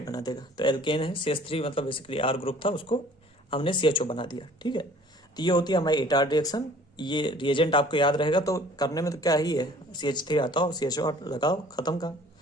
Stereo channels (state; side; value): normal; both; correlation 0.52